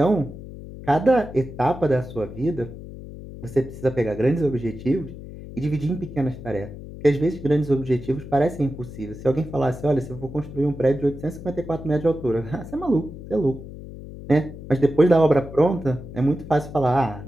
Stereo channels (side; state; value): left; noise; hum, 13 dB below the sound